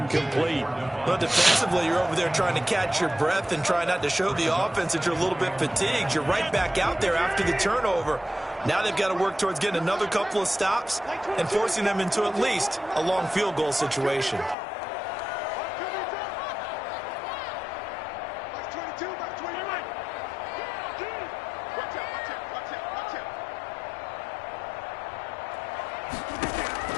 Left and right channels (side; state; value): right; drops out; at 14.6 s